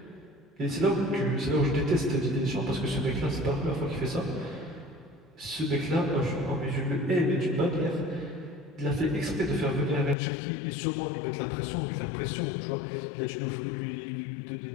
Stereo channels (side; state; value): right; drops out; at 10.2 s